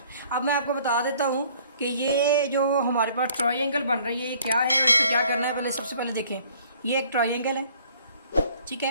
अब मैं आपको बता देता हूँ कि ये जो हमारे पास ट्रायंगल बन रही है ये क्या है और इसको क्या करना है। पहले सबसे पहले देखें, ये एक ट्रायंगल है, ठीक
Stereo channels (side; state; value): both; inverted; correlation -0.57